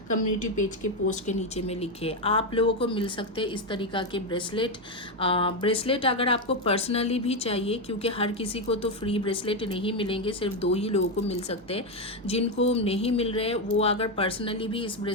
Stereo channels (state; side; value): normal; both; correlation 0.08